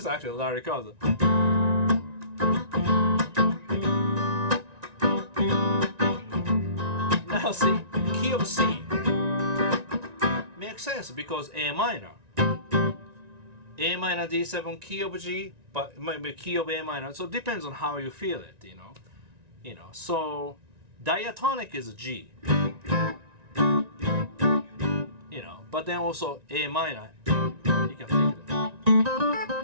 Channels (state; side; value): late; left; 1.9 ms